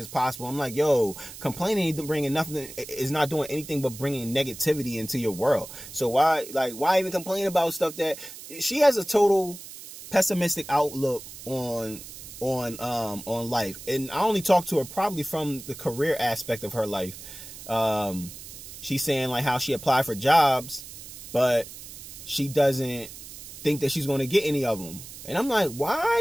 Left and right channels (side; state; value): right; noise; hiss, 14 dB below the sound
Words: possible. I'm like, yo, complaining is not doing anything but bringing negativity into your world. So why even complain about stuff that she has a total pessimistic outlook on life. And I only talk to her probably from the career aspect of her life. She's saying like how she applied for jobs, but she doesn't think that she's going to get any of them. And I'm like,